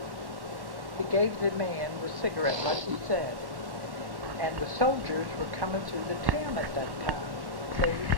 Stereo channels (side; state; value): left; late; 1.1 ms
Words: he gave the man the cigarette, like he said, and the soldiers were coming through the town at that time. See,